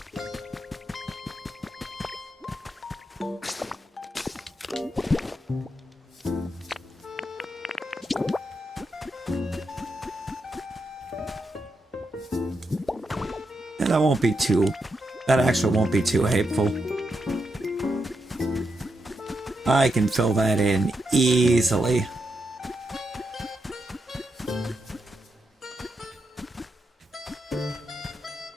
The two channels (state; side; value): normal; both; correlation 0.84